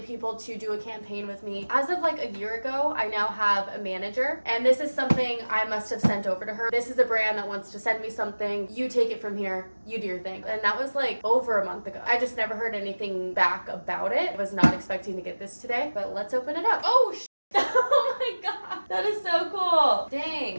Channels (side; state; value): both; inverted; correlation -1.00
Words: people to do a campaign with me. As of like a year ago, I now have a manager, and this is something I must have sent over to her. This is a brand that wants to send me something. You take it from here. You do your thing. And that was like over a month ago. I just never heard anything back about it. I was not expecting to get this today, but let's open it up. Oh, oh my god, that is so cool.